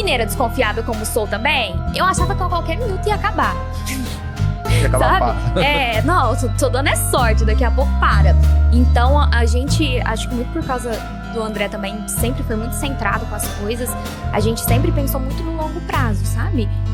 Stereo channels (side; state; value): both; identical; correlation 1.00